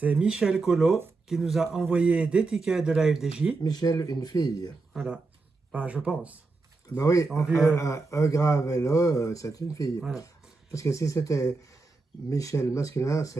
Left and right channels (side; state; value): left; quieter; 3.7 dB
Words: Michel Collot qui nous a envoyé des tickets de la FDJ. Michel, une fille. Voilà. Bah, je pense. Ben oui, En vue, un grave et là, c'est une fille. Voilà. Parce que si c'était Michel masculin,